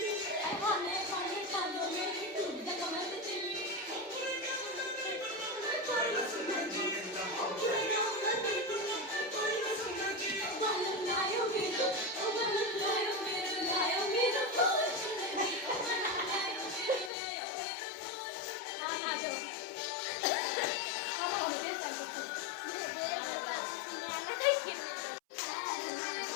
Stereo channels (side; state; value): right; drops out; at 17.1 s